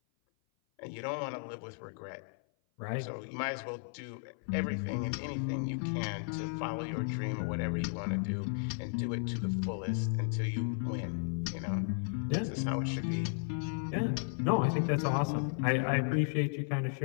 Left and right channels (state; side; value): silent; right; 55 dB below the other